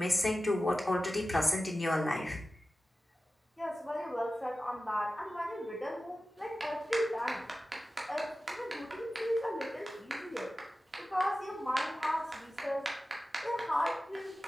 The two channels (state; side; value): normal; both; correlation 0.95